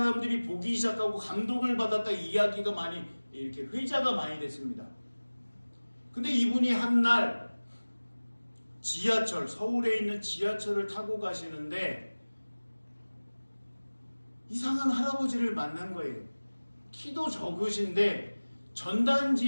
보기 시작하고 감동을 받았다, 이야기가 많이 이렇게 회자가 많이 됐습니다. 근데 이분이 한날 지하철, 서울에 있는 지하철을 타고 가시는데 이상한 할아버지를 만난 거예요. 키도 적으신데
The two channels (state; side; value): inverted; both; correlation -1.00